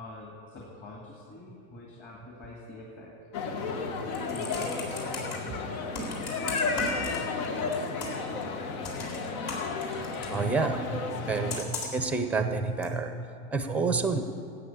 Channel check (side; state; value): both; normal; correlation 0.21